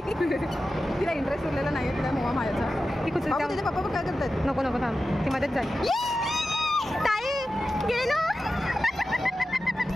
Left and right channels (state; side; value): normal; both; correlation 0.93